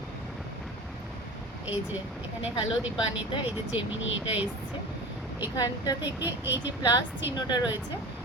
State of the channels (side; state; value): both; normal; correlation 0.34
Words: এই যে এখানে হ্যালো দীপানিতা, এই যে জেমিনি এটা এসছে। এখানটা থেকে এই যে প্লাস চিহ্নটা রয়েছে,